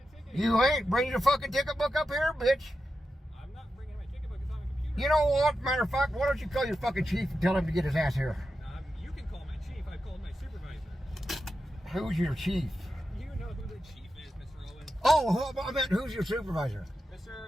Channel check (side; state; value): both; normal; correlation 0.90